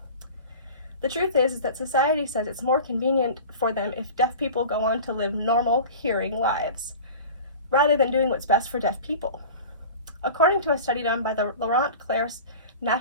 The truth is that society says it's more convenient for them if deaf people go on to live normal hearing lives, rather than doing what's best for deaf people. According to a study done by the Laurent Clerc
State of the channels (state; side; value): inverted; both; correlation -0.37